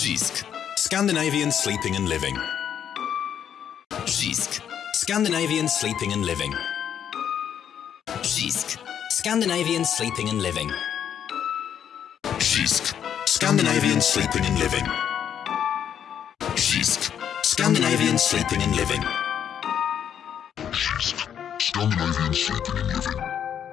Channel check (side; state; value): right; quieter; 9.0 dB